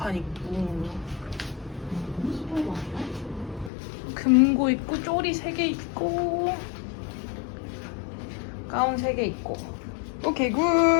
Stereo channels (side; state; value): right; drops out; at 3.7 s